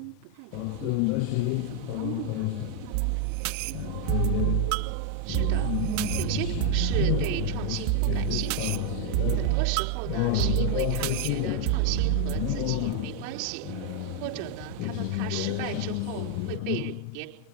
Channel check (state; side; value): different; both; correlation 0.00